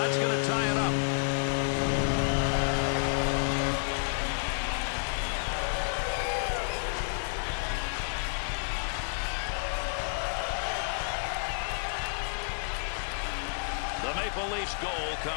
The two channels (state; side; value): silent; right; digital silence